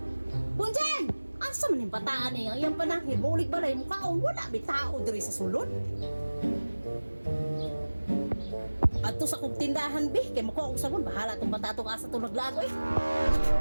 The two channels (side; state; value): both; inverted; correlation -1.00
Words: Bunjeng! Asa man yung bataan eh. Ang panahid. Maulig balay mo kaon. Wala may tao diri sa sulod. At to sa kong tindahan, be. Kaya makuha ko sabon. Bahala tong bata tong asa itong naglago eh.